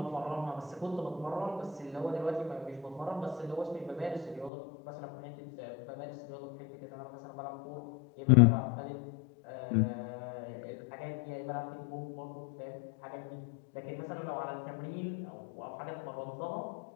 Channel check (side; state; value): right; drops out; at 4.5 s